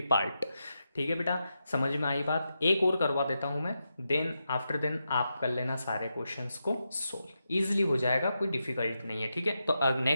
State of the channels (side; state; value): both; inverted; correlation -0.87